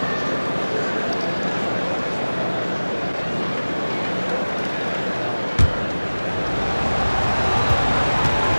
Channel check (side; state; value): both; inverted; correlation -1.00